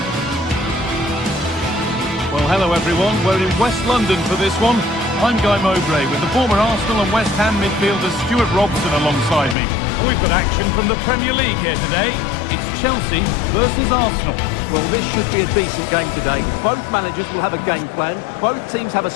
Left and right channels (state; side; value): drops out; right; at 9.6 s